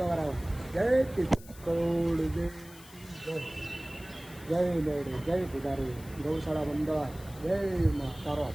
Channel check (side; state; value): left; noise; hiss, 20 dB below the sound